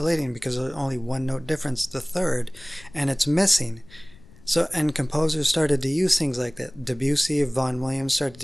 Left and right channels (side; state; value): left; noise; rumble, 23 dB below the sound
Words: because there's only 1-note difference, the third, and it's missing. So, and composers started to use things like that. Debussy, Vaughan Williams started